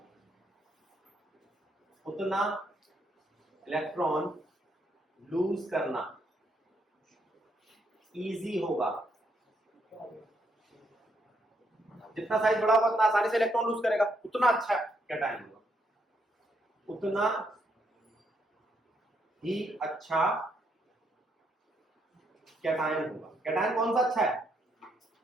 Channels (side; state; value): both; normal; correlation 0.75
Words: उतना इलेक्ट्रॉन लूज करना इजी होगा। जितना साइज बड़ा होगा उतना आसानी से इलेक्ट्रॉन लूज करेगा, उतना अच्छा कैटायन होगा, उतना ही अच्छा कैटायन होगा। कैटायन कौन सा अच्छा है?